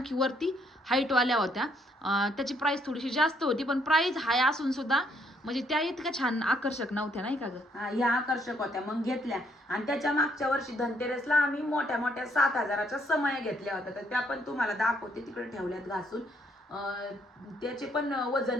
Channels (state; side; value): normal; both; correlation 0.70